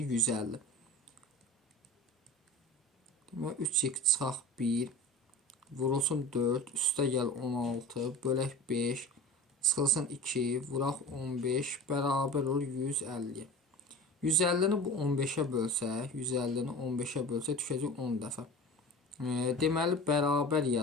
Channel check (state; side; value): normal; both; correlation 0.36